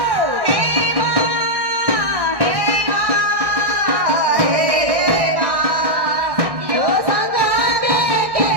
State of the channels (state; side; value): late; left; 1.6 ms